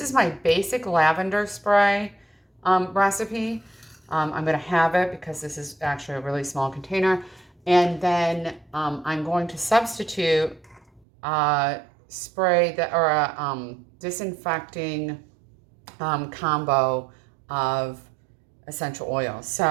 is my basic lavender spray recipe. I'm going to have it because this is actually a really small container. And then I'm going to substitute spray that, or a disinfecting combo of essential oils.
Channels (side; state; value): left; drops out; at 11.0 s